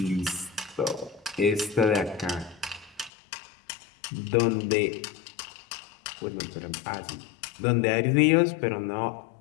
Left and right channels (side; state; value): right; drops out; at 3.1 s